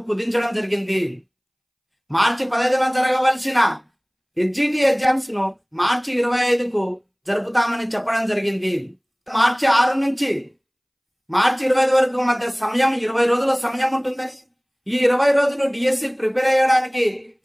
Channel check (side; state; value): both; identical; correlation 1.00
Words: కుదించడం జరిగింది. మార్చి 15న జరగవలసిన ఎస్జిటి ఎగ్జామ్స్ ను మార్చి 25కు జరుపుతామని చెప్పడం జరిగింది. మార్చి 6 నుంచి మార్చి 25 వరకు మధ్య సమయం 20 రోజుల సమయం ఉంటుందని, ఈ 20 రోజులు డిఎస్సి ప్రిపేర్ అయ్యడానికి